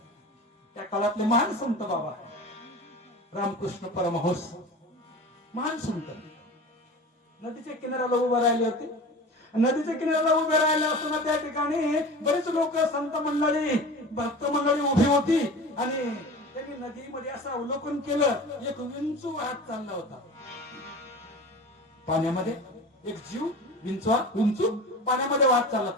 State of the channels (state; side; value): normal; both; correlation 0.35